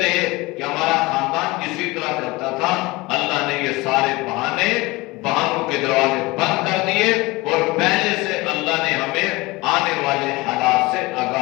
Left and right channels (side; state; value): right; quieter; 22.2 dB